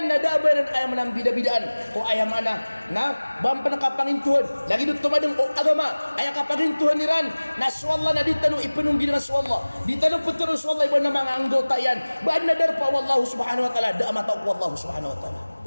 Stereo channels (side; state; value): both; inverted; correlation -1.00